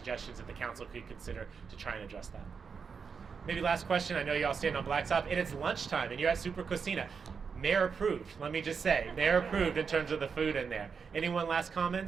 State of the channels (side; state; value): left; quieter; 5.8 dB